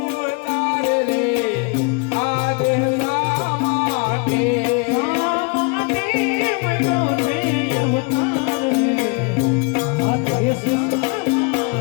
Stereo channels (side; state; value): right; quieter; 32.0 dB